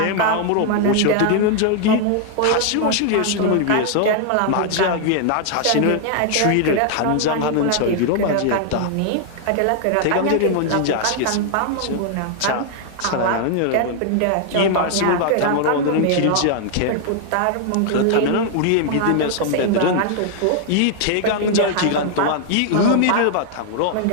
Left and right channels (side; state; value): both; different; correlation 0.00